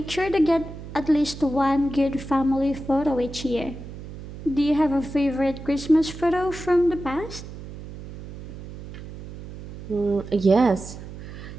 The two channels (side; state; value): right; noise; hum, 12 dB below the sound